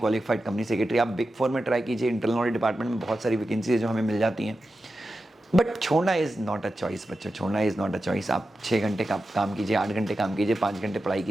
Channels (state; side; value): normal; both; correlation 0.92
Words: company secretary. आप बिग 4 में ट्राई कीजिए, इंटरनल ऑडिट डिपार्टमेंट में बहुत सारी वैकेंसी है जो हमें मिल जाती हैं। बट छोड़ना इज़ नॉट अ चॉइस बच्चों, छोड़ना इज़ नॉट अ चॉइस। आप 6 घंटे का काम कीजिए, 8 घंटे काम कीजिए, 5 घंटे पढ़ाई